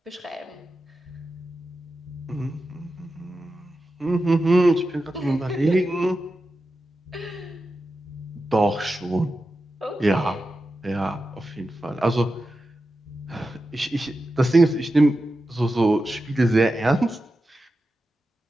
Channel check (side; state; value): both; normal; correlation 0.91